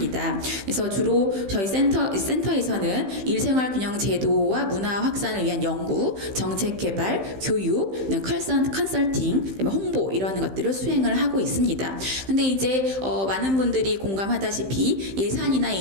그래서 주로 저희 센터에서는 일생활 균형 제도와 문화 확산을 위한 연구, 정책 개발, 교육, 컨설팅, 홍보 이런 것들을 수행을 하고 있습니다. 근데 이제 많은 분들이 공감하다시피 예산이나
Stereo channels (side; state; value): left; late; 15 ms